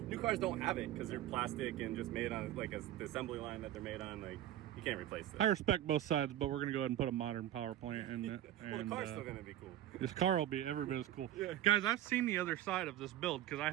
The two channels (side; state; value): left; quieter; 12.8 dB